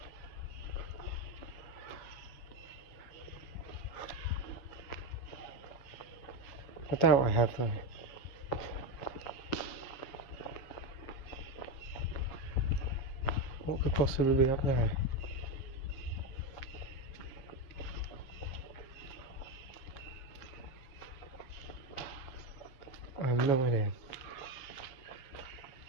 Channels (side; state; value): right; late; 7.8 ms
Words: I doubt I have though. What could possibly be up there? I have no idea.